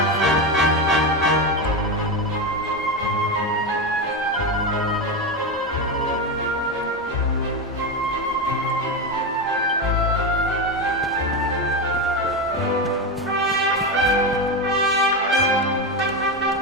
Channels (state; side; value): normal; both; correlation 0.14